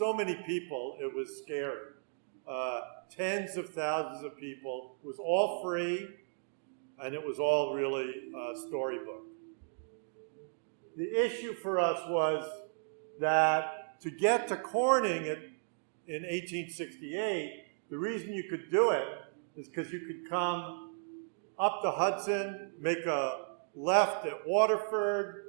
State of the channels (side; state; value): left; silent; digital silence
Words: many people, it was scary. Tens of thousands of people. It was all free, and it was all really storybook. The issue for us was that to get to Corning in 1868, the reason you could do it is because you could come up the Hudson, make a left at